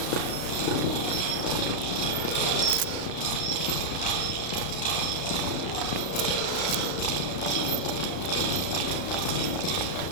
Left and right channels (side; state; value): right; late; 33 ms